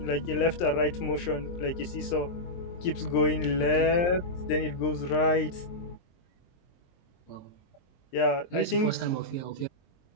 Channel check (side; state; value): right; late; 23 ms